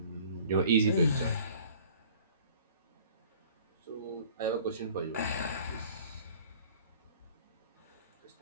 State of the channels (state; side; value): inverted; both; correlation -0.50